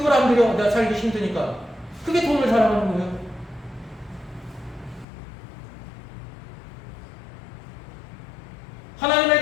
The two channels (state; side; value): drops out; right; at 5.1 s